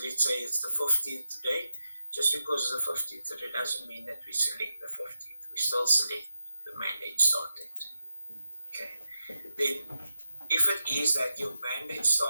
let's say it's the 15th today, just because it's the 15th today doesn't mean that we select the 15th. We still select the mandate start date. Okay. Then if it is that your mandate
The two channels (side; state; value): both; inverted; correlation -0.88